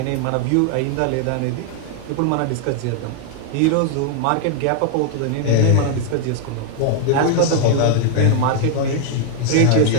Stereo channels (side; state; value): both; different; correlation 0.00